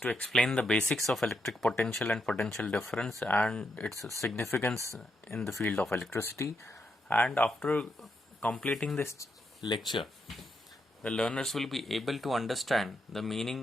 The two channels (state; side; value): normal; both; correlation 0.81